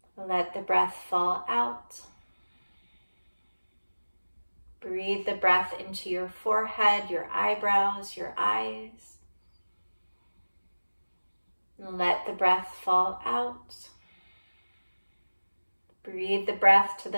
Let the breath fall out. Breathe the breath into your forehead, your eyebrows, your eyes. Let the breath fall out. Breathe the breath to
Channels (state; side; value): inverted; both; correlation -1.00